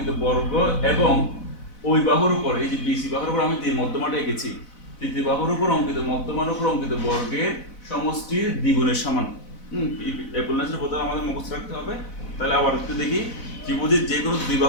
বর্গ এবং ওই বাহুর উপর, এই যে বিসি বাহুর উপর আমি যে মধ্যমাটা এঁকেছি, তৃতীয় বাহুর উপর অঙ্কিত মধ্যমার উপর অঙ্কিত বর্গের সমষ্টির দ্বিগুণের সমান। অ্যাপোলোনিয়াসের উপপাদ্য আমাদের মুখস্থ রাখতে হবে। তাহলে আবার একটু দেখি, ত্রিভুজের যে কোনো দুই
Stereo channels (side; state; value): right; late; 4.0 ms